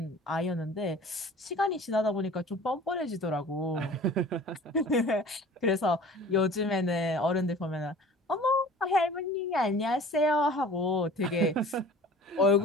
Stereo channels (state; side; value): normal; both; correlation 0.45